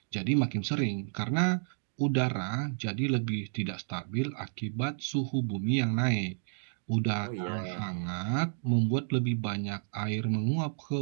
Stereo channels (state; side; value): silent; left; digital silence